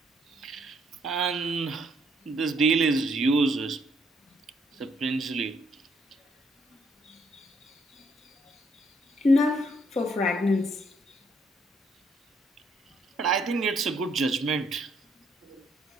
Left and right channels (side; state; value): both; normal; correlation 0.70